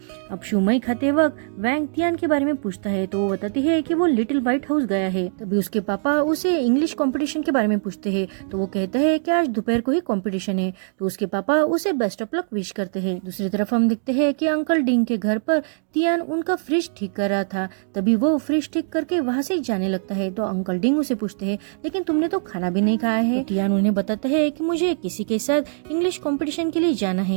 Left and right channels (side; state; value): left; silent; digital silence